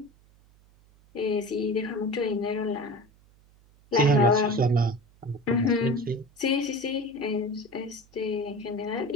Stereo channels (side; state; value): right; noise; hum, 29 dB below the sound